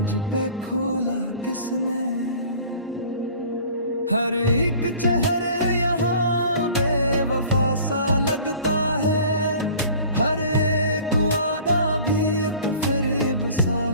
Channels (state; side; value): inverted; both; correlation -0.46